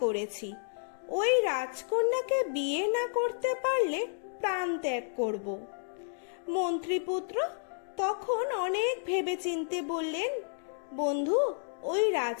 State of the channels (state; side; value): silent; right; digital silence